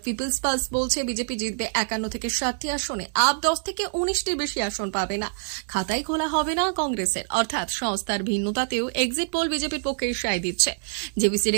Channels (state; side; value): silent; left; 61 dB below the other